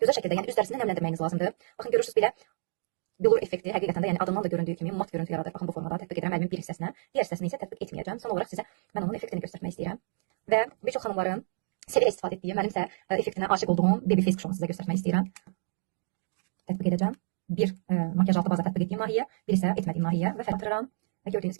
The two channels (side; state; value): left; silent; digital silence